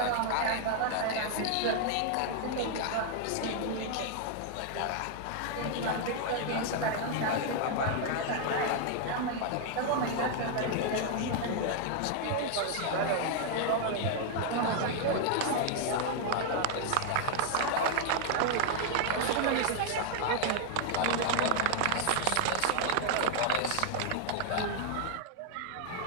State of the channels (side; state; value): both; different; correlation 0.00